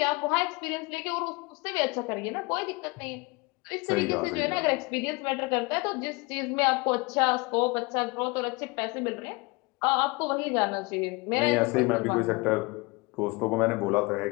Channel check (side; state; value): right; quieter; 26.5 dB